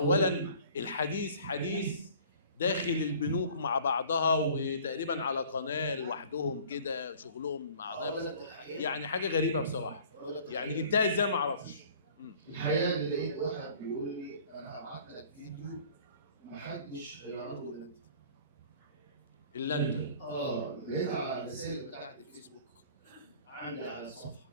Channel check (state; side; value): inverted; both; correlation -0.50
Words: الحديث حديث داخل البنوك مع بعضها وتقريبا على قناه لوحدهم كده شغلهم مع بعض، يعني حاجه غريبه بصراحه. يعني جبتها ازاي ما اعرفش. الحقيقه اللي لقيت واحد بيقول لي انا هبعت لك فيديو ما حدش هيعرضه الا انت. لقيتها على الرسائل بتاعت الفيسبوك عندي على الصفحه.